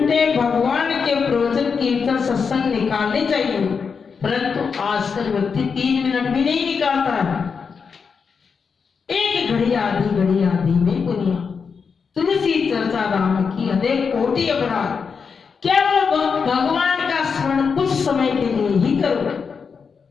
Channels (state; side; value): quieter; right; 5.8 dB